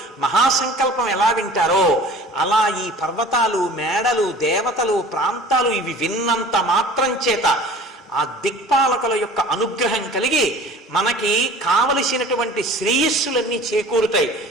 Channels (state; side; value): normal; both; correlation 0.44